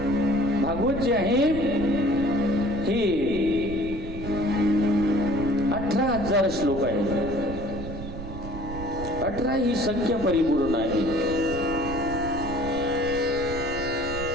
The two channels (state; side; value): noise; right; rumble, 9 dB below the sound